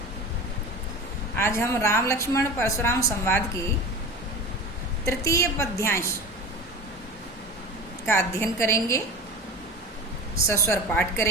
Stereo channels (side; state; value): both; normal; correlation 0.31